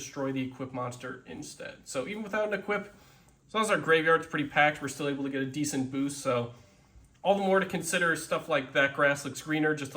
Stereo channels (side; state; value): both; identical; correlation 1.00